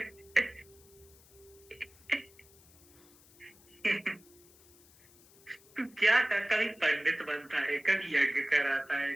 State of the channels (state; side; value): noise; left; hiss, 26 dB below the sound